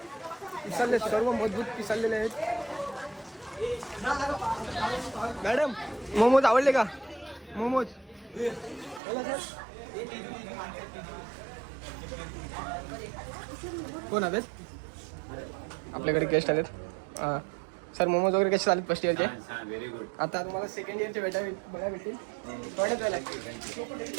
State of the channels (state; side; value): drops out; left; at 9.0 s